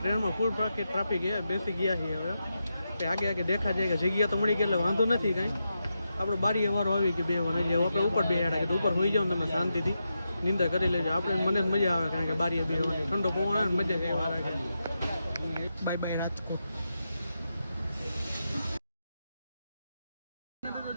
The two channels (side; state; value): both; inverted; correlation -0.87